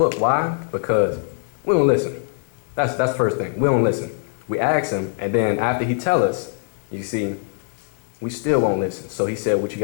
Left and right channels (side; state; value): right; silent; digital silence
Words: Why? Because we don't listen. That's the first thing. We don't listen. We ask him, and then after he tell us, you see, we still won't listen. So he said what you